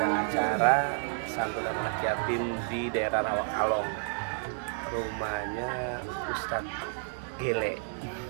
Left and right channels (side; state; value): left; silent; 57 dB below the other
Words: acara santunan anak yatim di daerah Rawakalong. Rumahnya Ustadz Gele.